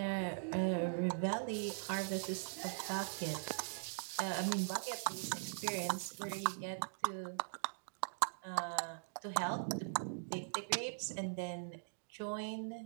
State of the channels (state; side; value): silent; left; digital silence